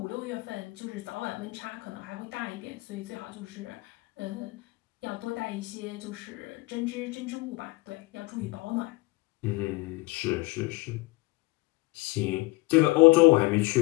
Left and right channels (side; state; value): right; quieter; 22.7 dB